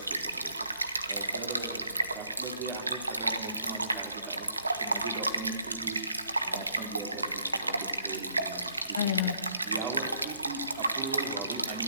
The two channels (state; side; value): inverted; both; correlation -0.67